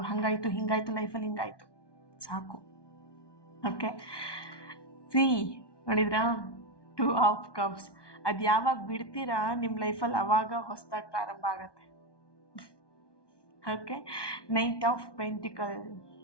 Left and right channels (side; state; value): right; late; 1.2 ms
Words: ಹಂಗಾಯ್ತು ಹಿಂಗಾಯ್ತು ಲೈಫಲ್ಲಿ ಹಿಂಗಾಯ್ತು, ಸಾಕು. ಓಕೆ, ಸಿ ನೋಡಿದ್ರಾ, 2 ಆಫ್ ಕಪ್ಸ್. ಅದು ಯಾವಾಗ ಬಿಡ್ತೀರಾ ನಿಮ್ಮ ಲೈಫಲ್ಲಿ ಅವಾಗ ಹೊಸದಾಗಿ ಪ್ರಾರಂಭ ಆಗತ್ತೆ. Okay, knight of pentacle,